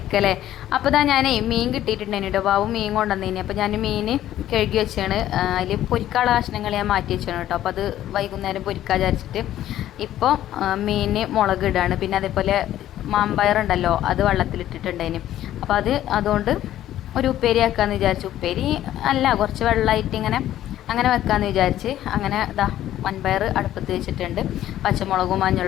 അപ്പോൾ ഞാൻ മീൻ കിട്ടിയിട്ടുണ്ടായിരുന്നു കേട്ടോ. ബാബു മീൻ കൊണ്ടുവന്നേനി. അപ്പോൾ ഞാൻ മീൻ കഴുകി വെച്ചാണ്. അതിൽ പൊരിക്കാനുള്ള കഷ്ണങ്ങൾ ഞാൻ മാറ്റി വെച്ചാണ് കേട്ടോ. അപ്പോൾ അത് വൈകുന്നേരം പൊരിക്കാൻ വിചാരിച്ചിട്ട് ഇപ്പോൾ മീൻ മുളക് ഇടാണ്. പിന്നെ അതേപോലെ മാമ്പയറുണ്ടല്ലോ, അത് വെള്ളത്തിലിട്ടിട്ടുണ്ടായിന്. അപ്പോൾ അതുകൊണ്ട് ഒരു ഉപ്പേരി ആക്കാമെന്ന് വിചാരിച്ചു. ഉപ്പേരി അല്ല, കുറച്ച് വെള്ളമായിട്ട് അങ്ങനെ വെക്കാമെന്ന് വിചാരിച്ച് അങ്ങനെ വൻപയർ അടുപ്പത്ത് വെച്ചിട്ടുണ്ട്. പച്ചമുളകും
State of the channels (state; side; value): quieter; right; 12.7 dB